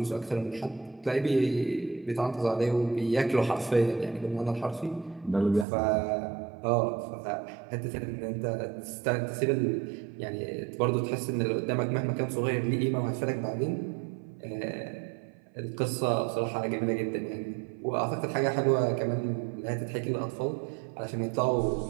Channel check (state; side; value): drops out; left; at 5.7 s